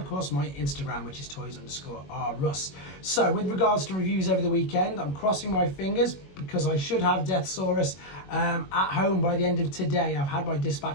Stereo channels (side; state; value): right; late; 21 ms